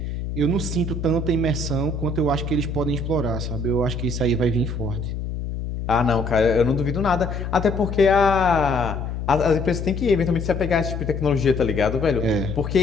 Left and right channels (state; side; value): noise; left; hum, 5 dB below the sound